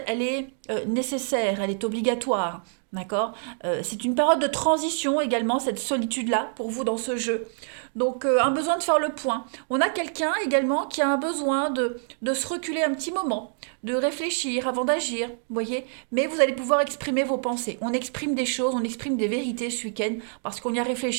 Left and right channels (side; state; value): left; silent; digital silence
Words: elle est nécessaire, elle est obligatoire. D'accord. C'est une période de transition également, cette solitude-là, pour vous dans ce jeu. Donc, un besoin de faire le point. On a quelqu'un également qui a un besoin de se reculer un petit moment, de réfléchir avant d'agir, vous voyez. Mais vous allez pouvoir exprimer vos pensées. On exprime des choses, on exprime des vérités ce week-end parce qu'on y a